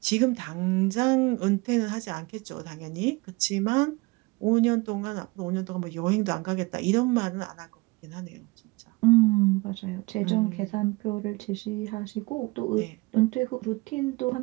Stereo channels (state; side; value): quieter; left; 24.3 dB